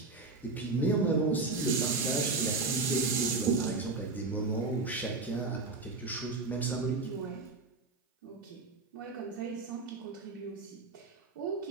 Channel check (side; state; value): left; quieter; 3.8 dB